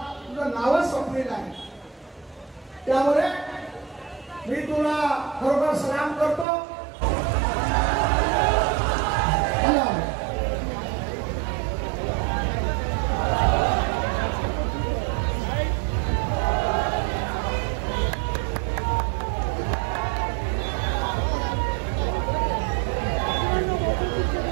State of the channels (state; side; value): drops out; left; at 6.5 s